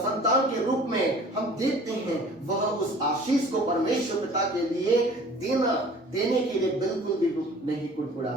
के रूप में, हम देखते हैं वह उस आशीष को परमेश्वर पिता के लिए देने के लिए बिल्कुल भी नहीं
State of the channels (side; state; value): both; normal; correlation 0.48